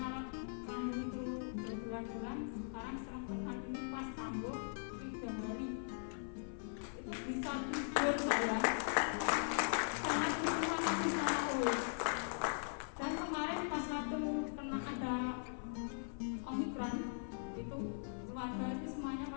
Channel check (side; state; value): right; silent; 51 dB below the other